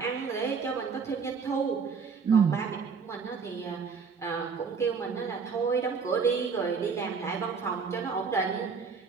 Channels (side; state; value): left; quieter; 5.5 dB